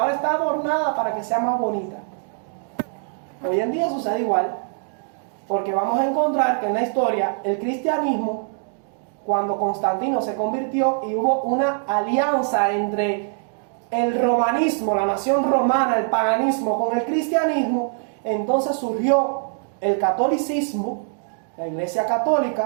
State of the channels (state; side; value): silent; left; 64 dB below the other